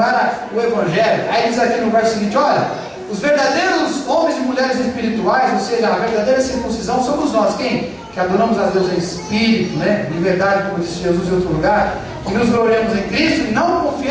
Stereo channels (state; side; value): identical; both; correlation 1.00